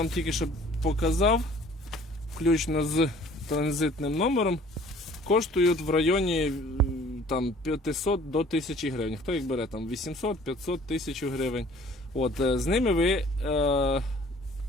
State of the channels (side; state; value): both; normal; correlation 0.52